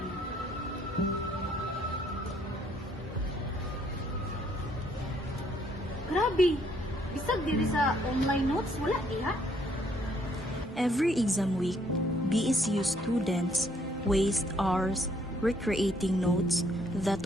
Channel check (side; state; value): both; normal; correlation 0.67